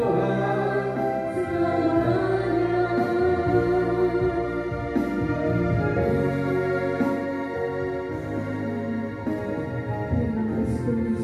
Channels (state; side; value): identical; both; correlation 1.00